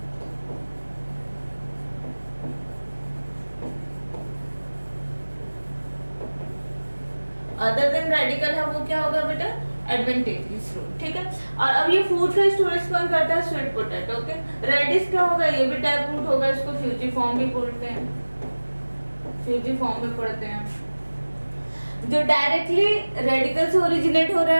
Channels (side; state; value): both; inverted; correlation -1.00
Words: Other than radical है वो क्या होगा बेटा? Adventitious root. ठीक है, और अब ये फूड का स्टोरेज कौन करता है? Sweet potato. ओके, रेडिस क्या होगा? ये भी टैप रूट होगा। इसको फ्यूजिफॉर्म भी बोलते हैं, फ्यूजिफॉर्म में पढ़ते हैं। जो डायरेक्टली रेडिकल से ओरिजिनेट हो रहा